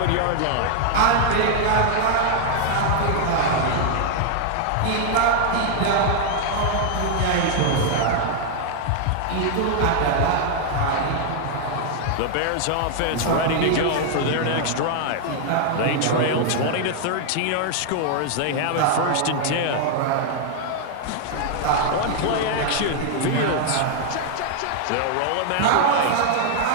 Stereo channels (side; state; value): both; different; correlation 0.00